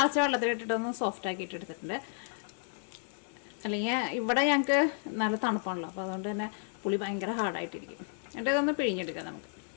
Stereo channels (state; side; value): silent; right; digital silence